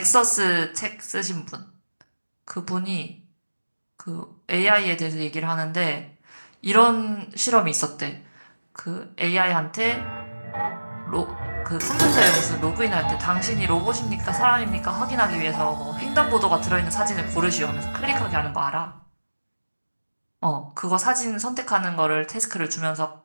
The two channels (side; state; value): both; inverted; correlation -1.00